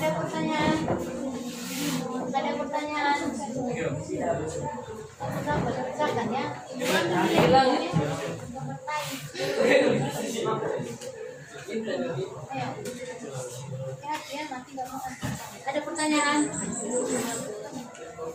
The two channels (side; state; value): both; identical; correlation 1.00